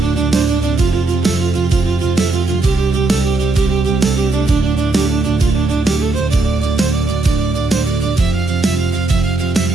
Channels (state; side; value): quieter; left; 3.1 dB